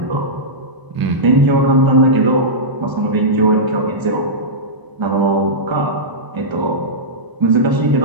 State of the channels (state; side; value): late; left; 1.0 ms